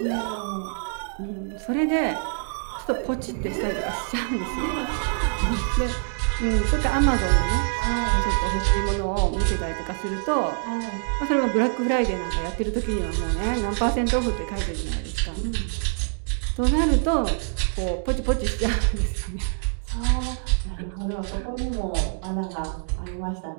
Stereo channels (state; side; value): silent; left; 62 dB below the other